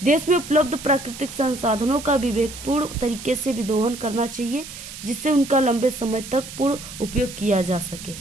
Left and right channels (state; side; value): noise; right; hiss, 13 dB below the sound